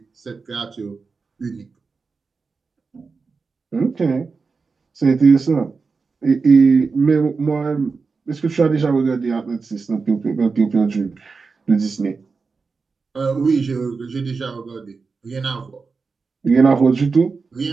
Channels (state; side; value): quieter; left; 4.6 dB